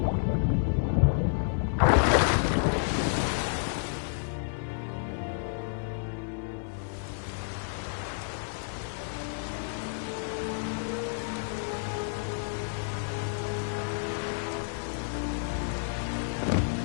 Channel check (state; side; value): silent; right; digital silence